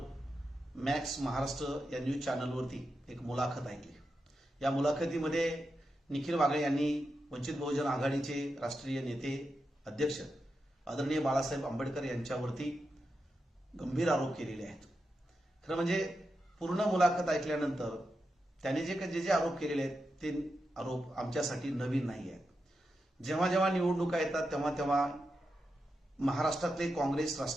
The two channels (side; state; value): both; normal; correlation 0.88